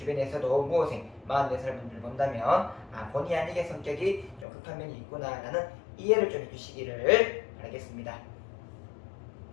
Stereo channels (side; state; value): right; drops out; at 4.5 s